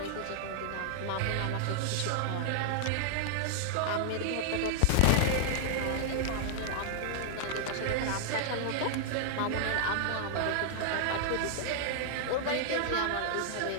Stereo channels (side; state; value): both; different; correlation -0.01